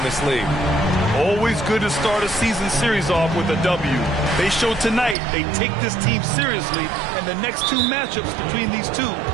this league. Always good to start a season series off with a W. They showed tonight they take this team seriously, and the next 2 matchups between these two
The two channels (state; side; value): drops out; left; at 5.2 s